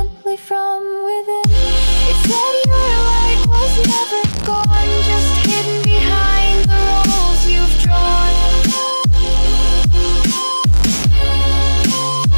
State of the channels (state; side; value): inverted; both; correlation -1.00